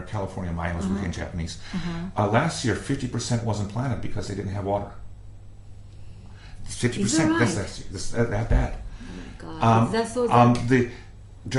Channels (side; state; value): both; identical; correlation 1.00